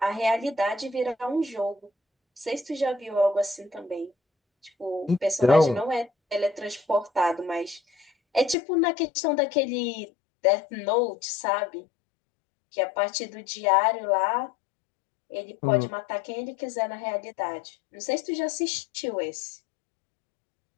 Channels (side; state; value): right; drops out; at 8.6 s